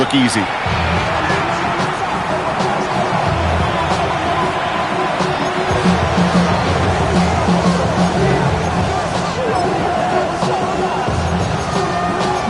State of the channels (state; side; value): identical; both; correlation 1.00